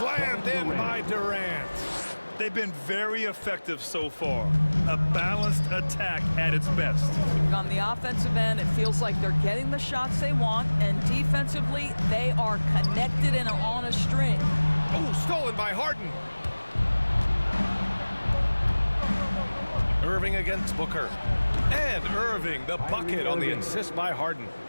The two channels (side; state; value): both; inverted; correlation -1.00